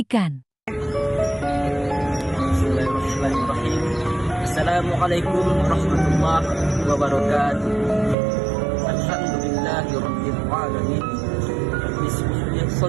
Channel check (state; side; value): drops out; left; at 8.2 s